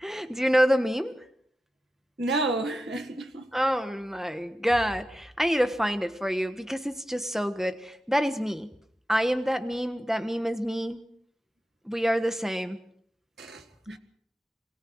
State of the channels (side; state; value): both; normal; correlation 0.92